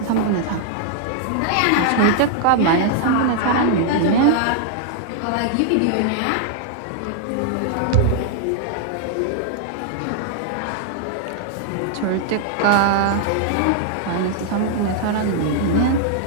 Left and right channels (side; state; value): both; different; correlation 0.00